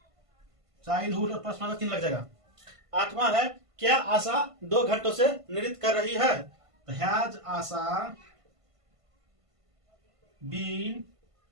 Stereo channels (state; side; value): late; left; 1.5 ms